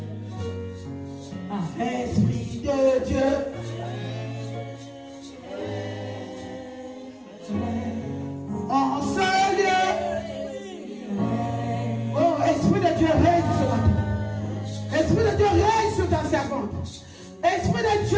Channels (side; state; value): both; identical; correlation 1.00